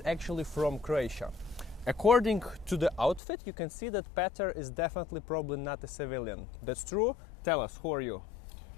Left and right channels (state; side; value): drops out; right; at 3.2 s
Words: actually from Croatia. According to the outfit, you can see that Petar is definitely probably not a civilian. That's true? Tell us, who are you?